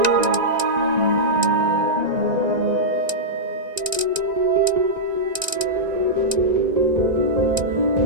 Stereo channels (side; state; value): left; late; 1.9 ms